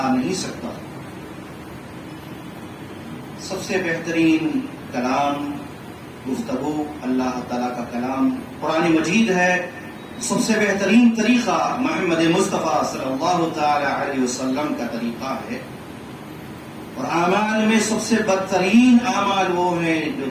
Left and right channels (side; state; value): both; identical; correlation 1.00